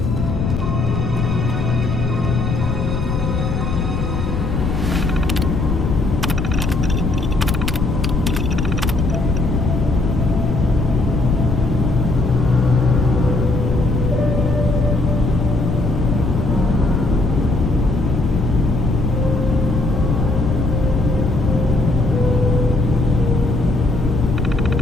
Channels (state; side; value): noise; left; rumble, 1 dB below the sound